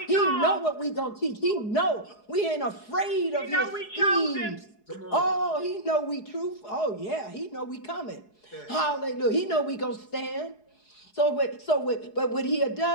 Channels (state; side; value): late; right; 4.7 ms